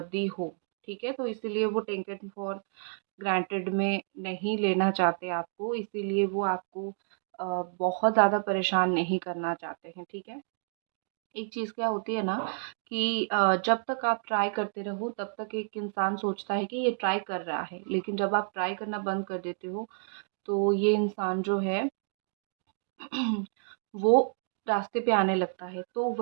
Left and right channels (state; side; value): silent; left; digital silence